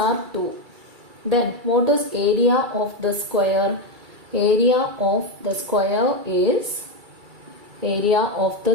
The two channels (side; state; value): left; late; 2.3 ms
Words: 2. Then what is area of the square? Area of the square is